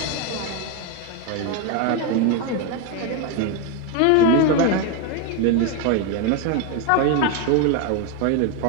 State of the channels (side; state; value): both; different; correlation 0.02